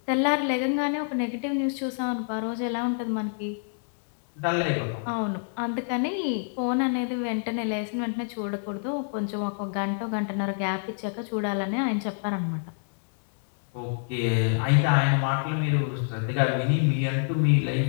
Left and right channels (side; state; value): right; silent; digital silence